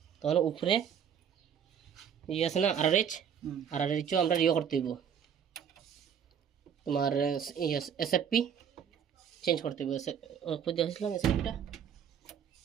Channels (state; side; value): quieter; left; 8.1 dB